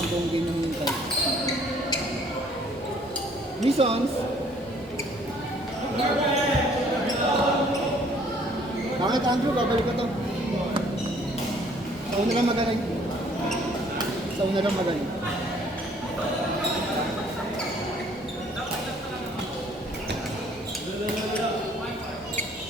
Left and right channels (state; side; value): normal; both; correlation 0.60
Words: buong game yung hintay. Misons! Bakit Andrew? Babalik ko to. Sa una lang magaling. Sa una lang magaling.